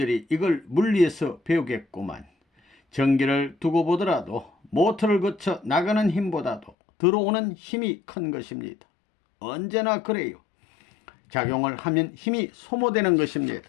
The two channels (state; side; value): drops out; right; at 6.8 s